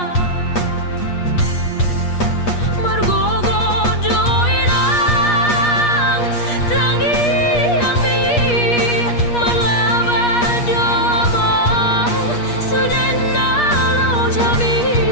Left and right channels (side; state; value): right; late; 8.4 ms